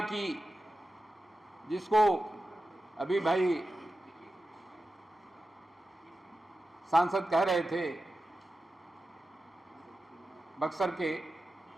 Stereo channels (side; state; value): both; normal; correlation 0.92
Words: की, जिसको अभी भाई सांसद कह रहे थे बक्सर के,